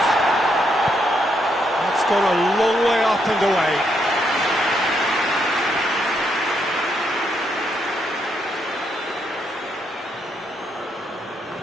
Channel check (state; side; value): normal; both; correlation 0.77